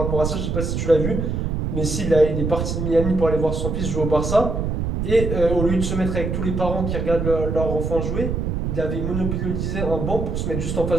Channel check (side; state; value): right; noise; rumble, 1 dB below the sound